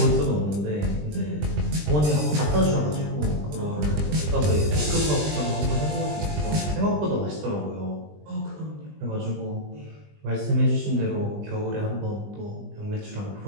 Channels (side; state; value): left; late; 20 ms